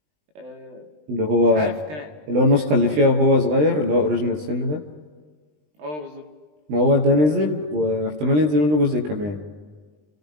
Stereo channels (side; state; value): left; late; 20 ms